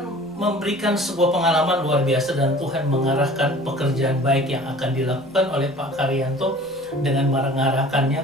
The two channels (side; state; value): both; normal; correlation 0.46